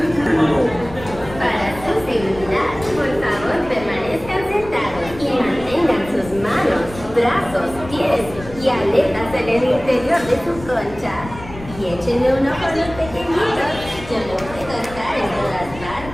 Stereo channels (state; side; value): noise; left; rumble, 15 dB below the sound